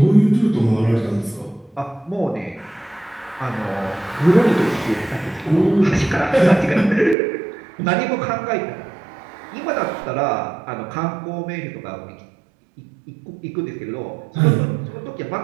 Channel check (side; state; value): left; drops out; at 7.2 s